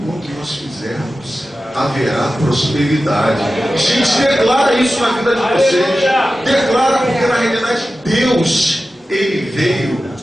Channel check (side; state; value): both; normal; correlation 0.94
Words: quanto nós fizermos haverá prosperidade. Gente, declara isso na vida de vocês. Declara, porque na realidade Deus, Ele veio